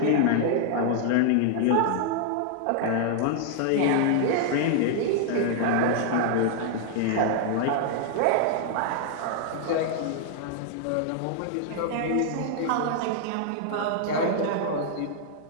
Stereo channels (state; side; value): different; both; correlation 0.00